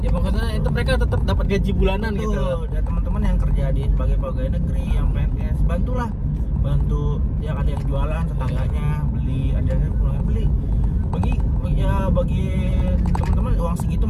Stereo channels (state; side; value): identical; both; correlation 1.00